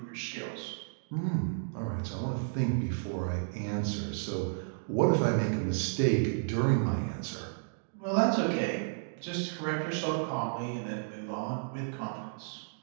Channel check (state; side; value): silent; left; digital silence